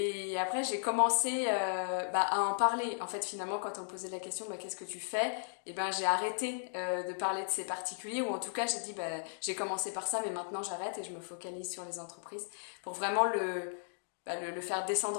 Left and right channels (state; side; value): silent; right; digital silence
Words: après, j'ai commencé à en parler. En fait, finalement, quand on me posait la question, qu'est-ce que tu fais? Et ben, j'ai arrêté de parler de ces particuliers, ou en tout cas, j'ai dit, j'ai commencé par ça, mais maintenant, j'arrête et je me focalise sur les entreprises pour vraiment le faire